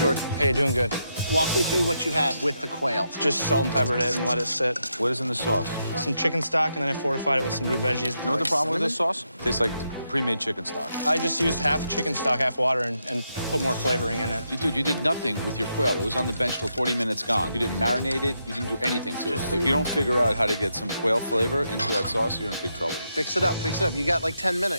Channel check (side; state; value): both; inverted; correlation -0.82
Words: Hey, doing good. walk me through what you have with the quail. Just salt and peppered it and let it sit. What is in the sauce? Some chicken stock, and then I fortified it with some root veggies. You know what the problem with this sauce? Tastes like pre-made chicken stock. I just used half chicken stock, half water, and put more flavoring in it. Dude, you did nothing with your quail. It was on the bench till 40 minutes gone. You didn't marinate it. You didn't do anything to it. If you don't figure out how to get some quail flavor into that sauce, you're in big trouble. Fix it up, fix it up. You got like 10